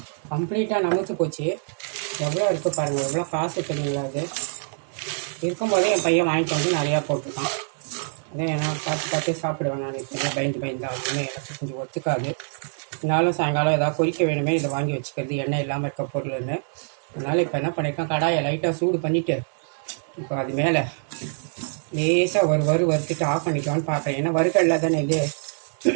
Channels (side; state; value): left; silent; digital silence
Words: கம்ப்ளீட்டாக நமுத்து போச்சு. எவ்வளோ இருக்குது பாருங்கள், எவ்வளோ காசு தெரியுங்களா. அது இருக்கும்போதே என் பையன் வாங்கிட்டு வந்து நிறையா போட்டுருக்கான். அதே நான் பார்த்து சாப்பிடுவேன். நான் இப்போ பயந்து அப்படின்னு எனக்கு கொஞ்சம் ஒத்துக்காது. இருந்தாலும் சாயங்காலம் ஏதாவது பொரிக்க வேணுமே இதை வாங்கி வச்சுக்கிறது, எண்ணெய் இல்லாமல் இருக்க பொருள்னு. அதனால் இப்போ என்ன பண்ணியிருக்கேன், கடாயை லைட்டாக சூடு பண்ணிவிட்டு இப்போ அது மேலே லேசாக வறுத்துட்டு ஆஃப் பண்ணிக்கலான்னு பார்க்குறேன். ஏன்னா வறுக்கல்ல தானே இது